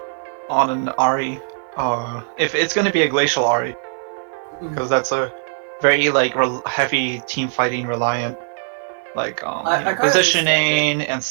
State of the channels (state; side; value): silent; left; 57 dB below the other